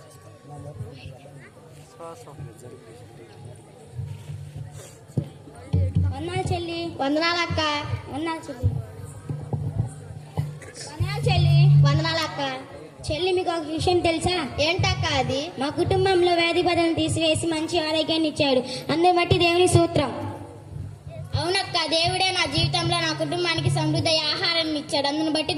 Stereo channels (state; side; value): identical; both; correlation 1.00